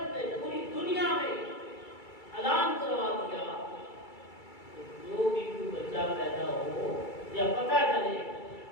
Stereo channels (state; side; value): late; right; 2.3 ms